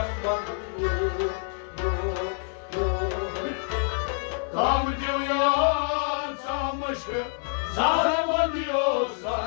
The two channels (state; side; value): silent; right; 60 dB below the other